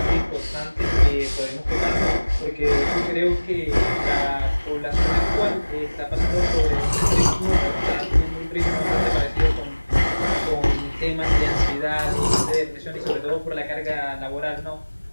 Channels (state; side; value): inverted; both; correlation -1.00